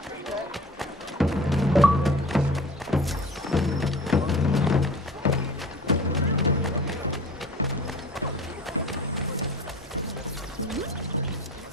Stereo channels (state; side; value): normal; both; correlation 0.41